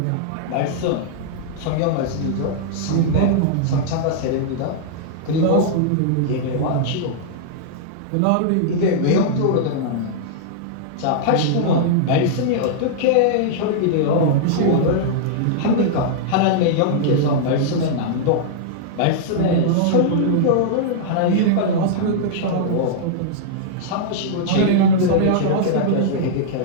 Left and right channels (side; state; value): both; different; correlation -0.02